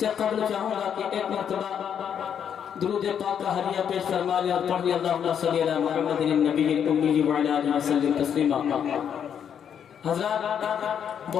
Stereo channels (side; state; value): right; quieter; 8.3 dB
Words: कबल चाहूँगा कि एक मरतबा दुरूद पाक का हदिया पेश फरमा लें और पढ़ लें अल्लाहुम्मा सल्ली अला मुहम्मदिन नबीयिल उम्मी व अला आलिहि वसल्लम तस्लीमा। हज़रात